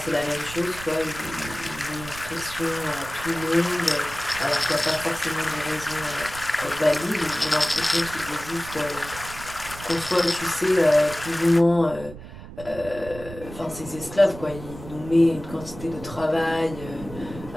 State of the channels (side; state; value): right; noise; rumble, 14 dB below the sound